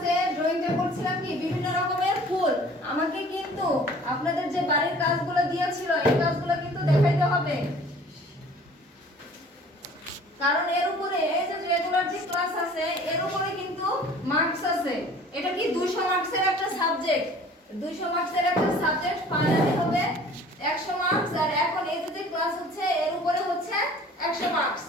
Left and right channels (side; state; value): both; normal; correlation 0.49